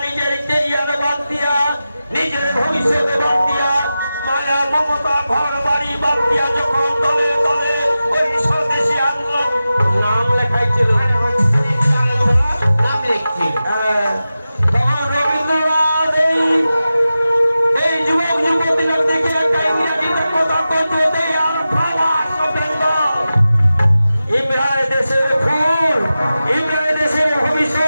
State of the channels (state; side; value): inverted; both; correlation -0.94